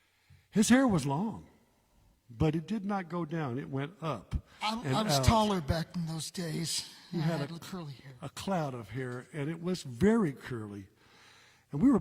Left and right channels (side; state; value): both; identical; correlation 1.00